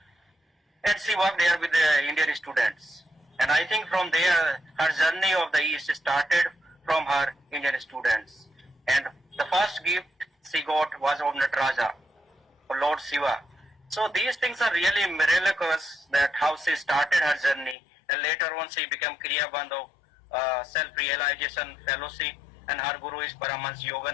and she worked there with the Indian students. And I think from there, her journey of the East started from her Indian students. And the first gift she got was of Nataraja, of Lord Shiva. So these things are really miraculous, that how she started her journey, and later on she became Kriya Bandh of Self-Realization Fellowship, and her guru is Paramahansa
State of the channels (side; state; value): right; drops out; at 17.8 s